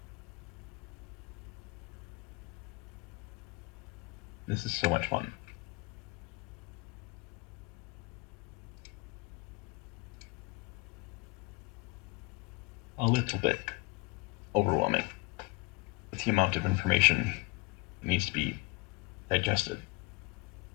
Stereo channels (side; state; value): right; quieter; 25.5 dB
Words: This is so much fun. A little bit overwhelming with the amount of information that needs to be digested.